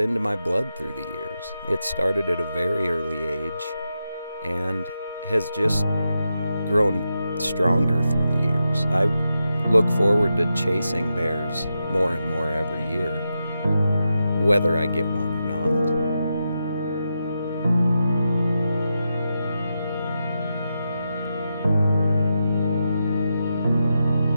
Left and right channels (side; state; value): both; inverted; correlation -0.87